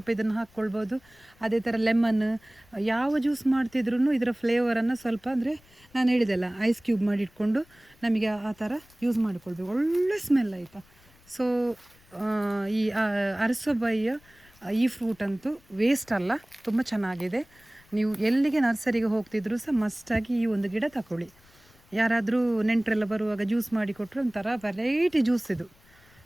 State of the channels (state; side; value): noise; left; rumble, 29 dB below the sound